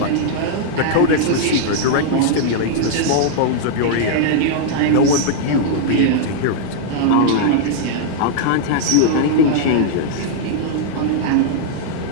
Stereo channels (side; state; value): both; different; correlation -0.01